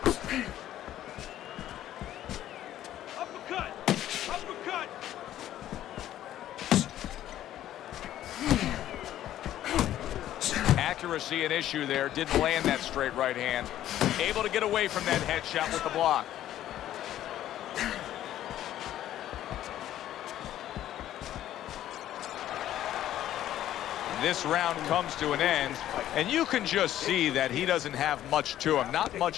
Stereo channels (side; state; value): right; quieter; 12.5 dB